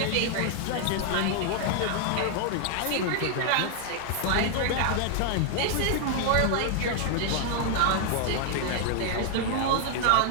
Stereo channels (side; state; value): both; different; correlation 0.00